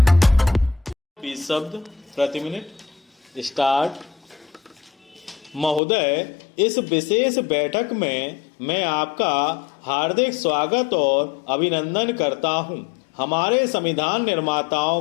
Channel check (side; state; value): right; drops out; at 5.8 s